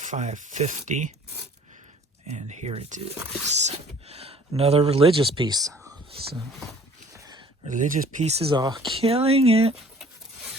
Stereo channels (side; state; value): both; normal; correlation 0.52